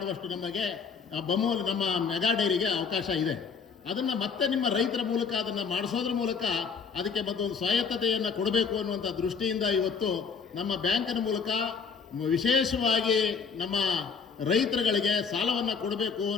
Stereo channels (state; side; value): quieter; right; 5.7 dB